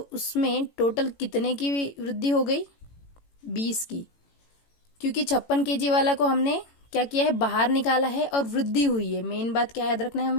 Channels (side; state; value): right; late; 18 ms